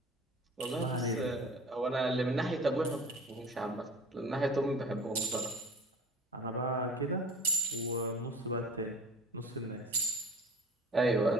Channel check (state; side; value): normal; both; correlation 0.43